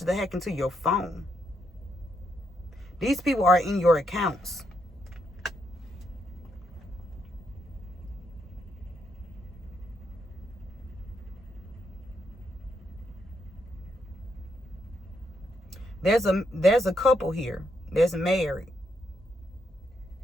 that hack into your phone. These people are in your accounts. There's a couple here that's married,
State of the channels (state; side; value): normal; both; correlation 0.78